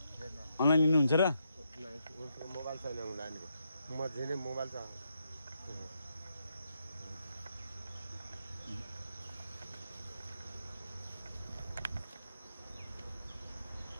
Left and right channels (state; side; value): inverted; both; correlation -0.80